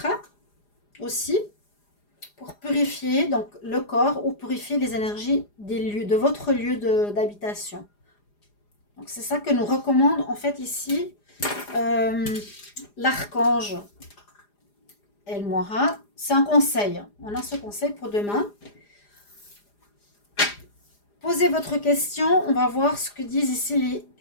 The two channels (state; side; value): late; right; 4.9 ms